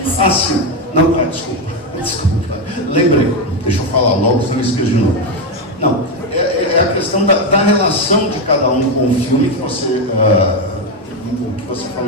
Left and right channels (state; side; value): normal; both; correlation 0.08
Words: Ah, sim. Não, desculpa. Lembrei. Deixa eu falar logo, senão eu esqueço de novo. Não, é a questão da relação de cada um com o filme que você